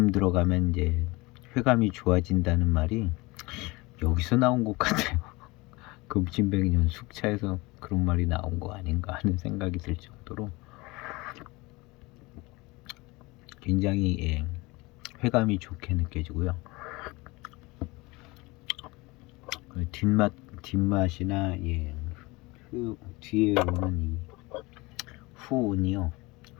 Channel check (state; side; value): quieter; right; 23.4 dB